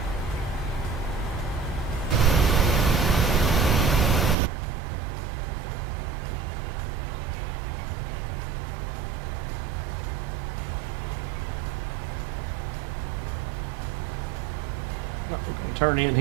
We're going to turn in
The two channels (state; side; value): drops out; left; at 4.4 s